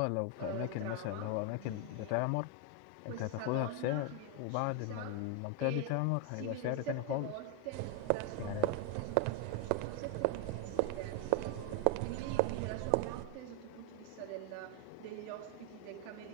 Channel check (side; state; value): both; different; correlation 0.01